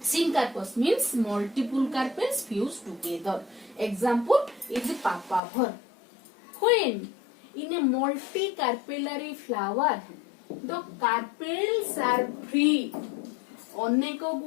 means multiple carpels fused together. Example is papaver. When in a multicarpellary flower, the carpels are free. अनेक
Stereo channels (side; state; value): right; drops out; at 5.4 s